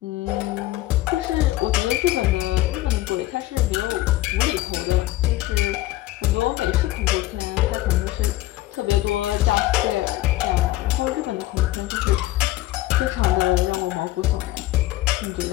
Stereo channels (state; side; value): quieter; right; 16.3 dB